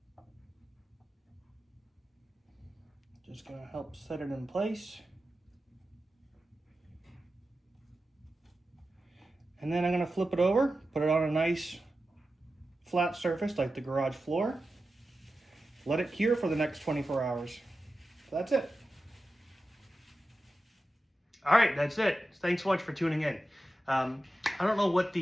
Just gonna help set it in place. And then I'm gonna flip it over, put it on a nice flat surface like the garage floor. Let it cure for the next 24 hours. So that's it. All right, that's it. Thanks so much for tuning in. I don't know what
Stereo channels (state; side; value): normal; both; correlation 0.93